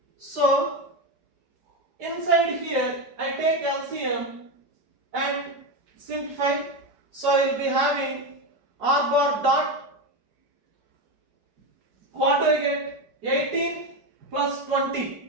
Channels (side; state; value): left; late; 4.8 ms